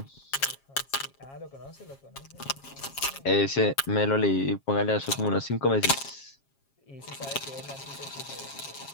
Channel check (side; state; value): right; late; 7.4 ms